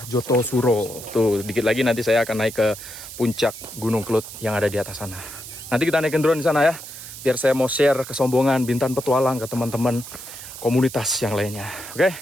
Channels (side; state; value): right; noise; hiss, 13 dB below the sound